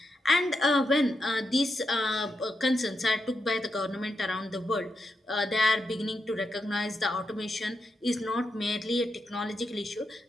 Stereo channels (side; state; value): both; normal; correlation 0.85